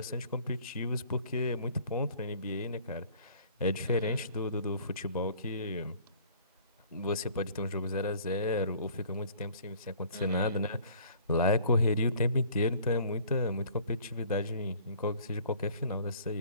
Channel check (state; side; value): inverted; both; correlation -0.52